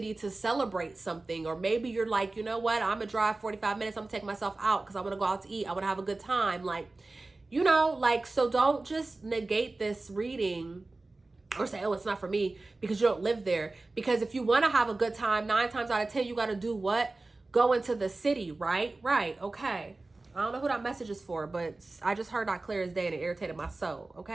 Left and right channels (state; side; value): quieter; left; 3.2 dB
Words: to celebrate something. Or maybe you're like, you know what? I'm going to drive 45 minutes. I'm going to take myself out because I want to go out to eat. I want to have a good time. Like, you know, like, so don't just negate this reading or say, oh, it's not for me because you don't live there. Because if you want to have a good time, 9 times out of 10, you got to do what? Go into the city, right? Right. Okay. I don't know who that message is for, but I just heard that clear as day and it irritated my soul.